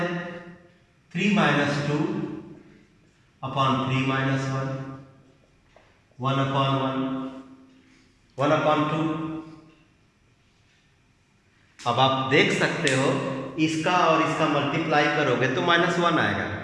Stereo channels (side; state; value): both; identical; correlation 1.00